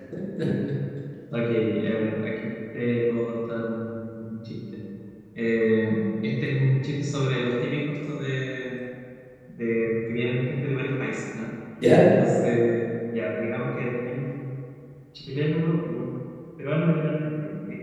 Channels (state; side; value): identical; both; correlation 1.00